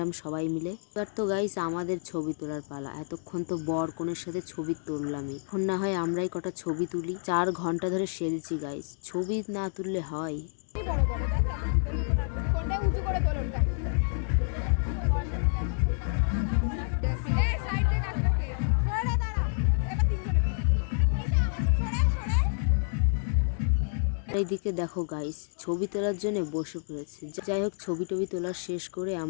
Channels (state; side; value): silent; right; digital silence